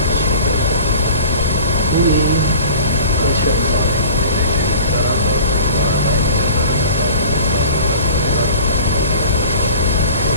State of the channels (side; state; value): both; inverted; correlation -0.44